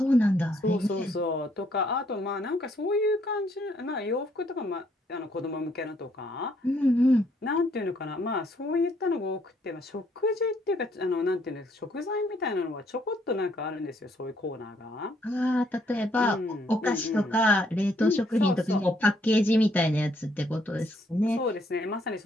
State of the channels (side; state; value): both; normal; correlation 0.69